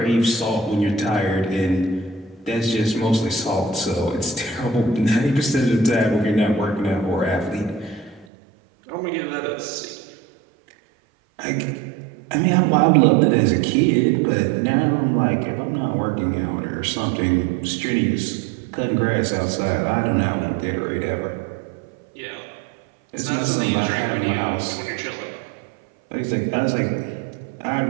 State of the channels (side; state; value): left; drops out; at 8.2 s